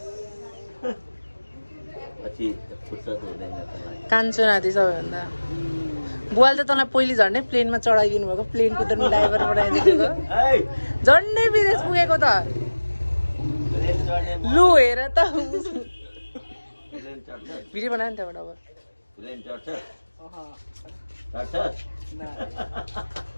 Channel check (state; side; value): inverted; both; correlation -1.00